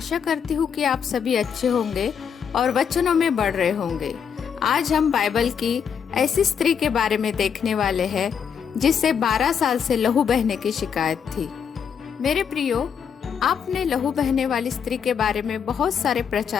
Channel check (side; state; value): right; quieter; 7.3 dB